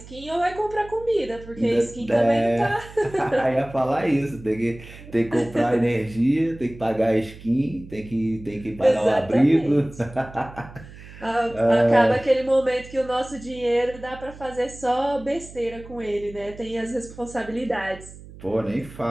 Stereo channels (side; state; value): right; noise; hum, 17 dB below the sound